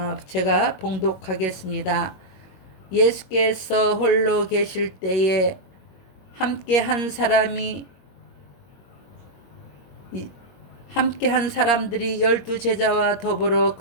제가 봉독하겠습니다. 예수께서 홀로 계실 때에 함께 한 사람들이 12제자와 더불어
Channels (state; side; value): late; right; 21 ms